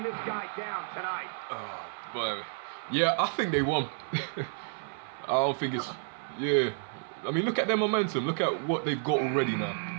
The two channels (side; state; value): left; silent; 57 dB below the other